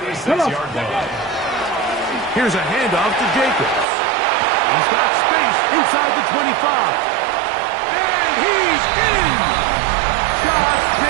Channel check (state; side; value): drops out; left; at 3.9 s